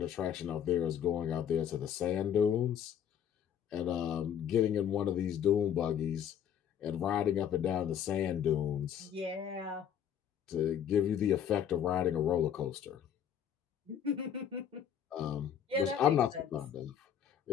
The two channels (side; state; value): right; quieter; 9.1 dB